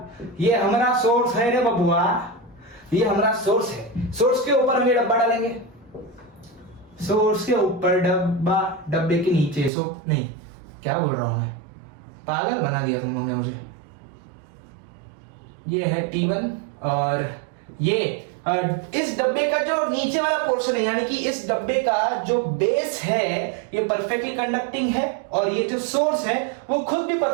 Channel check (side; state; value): left; drops out; at 9.7 s